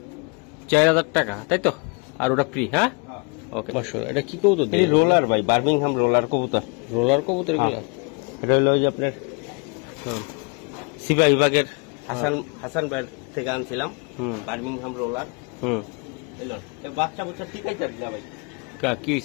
4000 টাকা, তাই তো? আর ওটা ফ্রি? হ্যাঁ, ওকে। মাশাআল্লাহ, এটা কি কবুতর দিয়ে? রোলার ভাই, বার্মিংহাম রোলার কবুতর। রোলার কবুতর এগুলা? এটা হলো যে আপনার সিগা বিভাগের হাসান ব্যান্ড থেকে আনছিলাম, বার্মিংহাম রোলার। এলো বাচ্চা বাচ্চা ঠিকই যাবে না ভাই। কি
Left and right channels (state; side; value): quieter; right; 33.5 dB